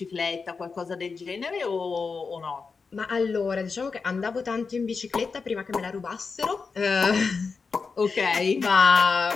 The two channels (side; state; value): right; quieter; 4.9 dB